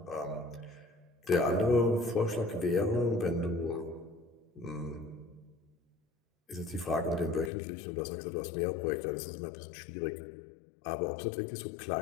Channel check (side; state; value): right; drops out; at 7.5 s